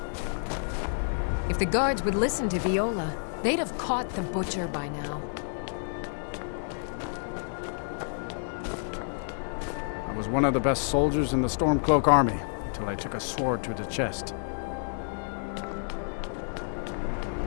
If the guards would listen to Viola, they'd have caught the butcher by now. I was one of the best soldiers in the Stormcloak army, until I took a sword to the chest.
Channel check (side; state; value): right; silent; digital silence